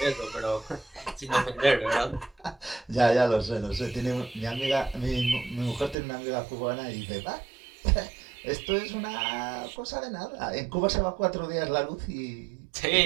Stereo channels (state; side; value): drops out; left; at 6.0 s